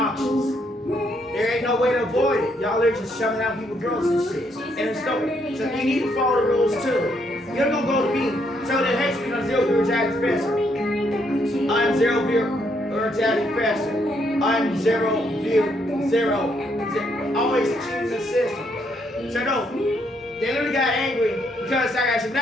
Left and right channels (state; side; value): normal; both; correlation 0.74